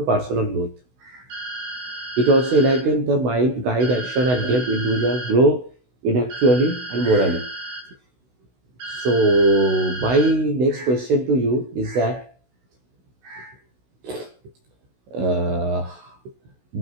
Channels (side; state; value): left; late; 16 ms